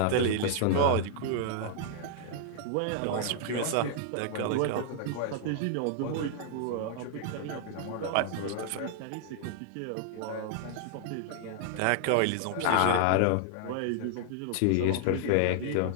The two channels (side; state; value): both; different; correlation 0.00